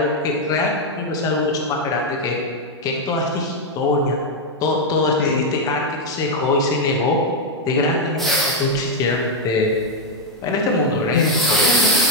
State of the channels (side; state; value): both; normal; correlation 0.01